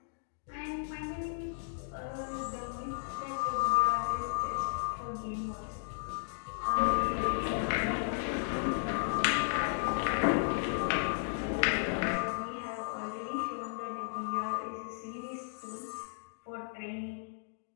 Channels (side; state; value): right; silent; digital silence